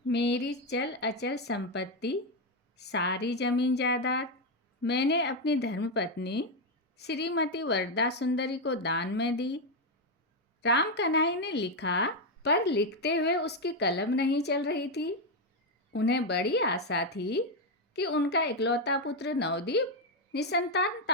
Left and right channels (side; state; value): both; normal; correlation 0.05